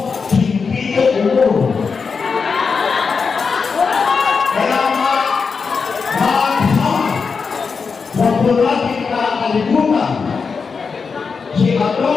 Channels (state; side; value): quieter; right; 5.3 dB